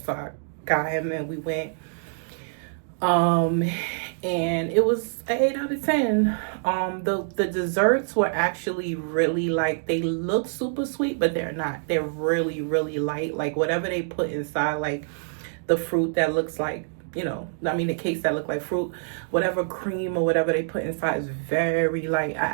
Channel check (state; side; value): silent; left; digital silence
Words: So I got him and we went. And it was an 8 out of 10. The desserts were actually really, like, they look super sweet, but they're not. They're really, really light. Like, whatever they put inside, like the fruit that looks like, the cakes that look like fruit, whatever cream or whatever they put inside is very light.